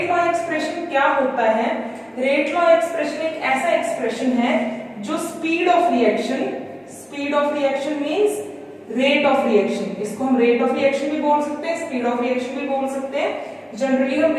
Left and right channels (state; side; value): identical; both; correlation 1.00